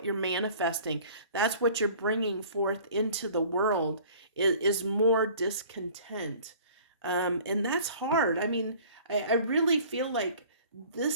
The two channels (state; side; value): inverted; both; correlation -0.49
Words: you're manifesting. That's what you're bringing forth into the world, is more discontent. And that's hard. I mean, I really feel like